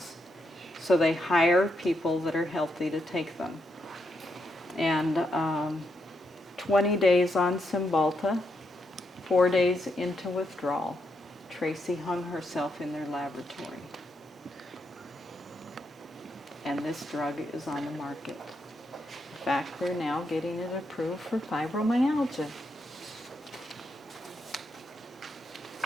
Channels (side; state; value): both; normal; correlation 0.80